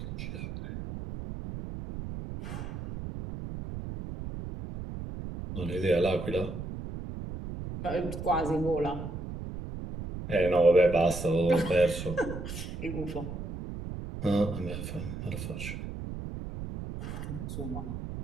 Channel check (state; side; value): noise; right; rumble, 7 dB below the sound